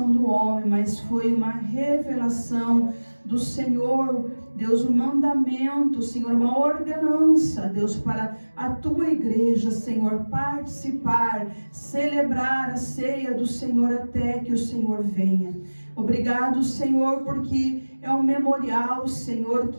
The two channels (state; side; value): inverted; both; correlation -1.00